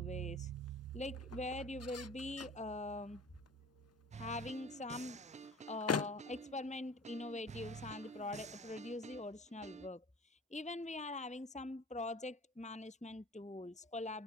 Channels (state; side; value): normal; both; correlation 0.42